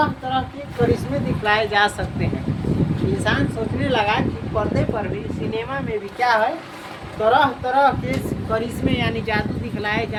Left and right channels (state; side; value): identical; both; correlation 1.00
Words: तरह के करिश्मे दिखलाए जा सकते हैं। इंसान सोचने लगा कि पर्दे पर भी, सिनेमा में भी क्या है, तरह तरह के करिश्मे यानी जादू दिखलाए